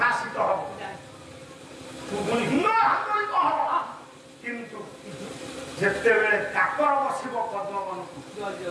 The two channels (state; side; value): identical; both; correlation 1.00